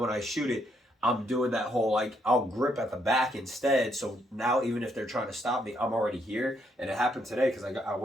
I shoot it, I'm doing that whole like I'll grip at the back instead. So now even if they're trying to stop me, I'm already here. And it happened today because I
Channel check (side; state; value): both; normal; correlation 0.73